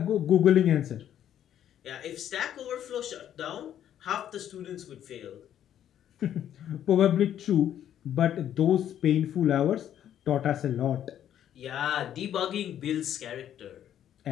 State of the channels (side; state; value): right; quieter; 10.5 dB